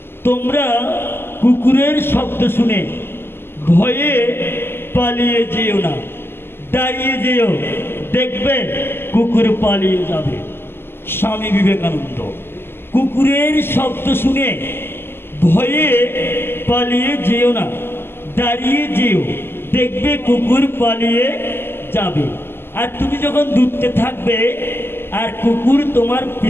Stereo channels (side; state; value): right; late; 0.11 ms